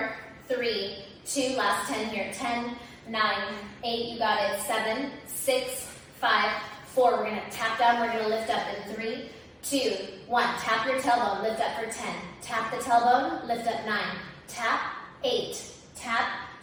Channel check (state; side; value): identical; both; correlation 1.00